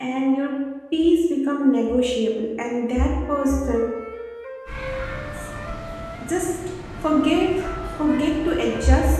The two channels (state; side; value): identical; both; correlation 1.00